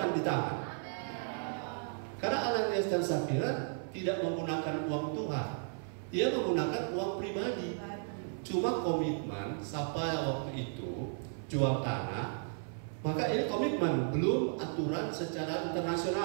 di tangan. Karena Ananias dan Safira tidak menggunakan uang Tuhan, dia menggunakan uang pribadi. Cuma komitmen sampai waktu itu jual tanah, maka ini komitmen, belum aturan secara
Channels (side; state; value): left; silent; 55 dB below the other